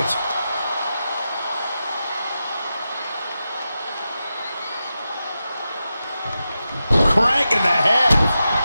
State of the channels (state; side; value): inverted; both; correlation -0.90